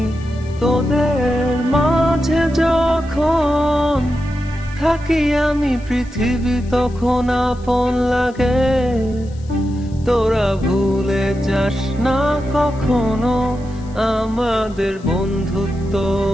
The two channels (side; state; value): left; noise; hiss, 27 dB below the sound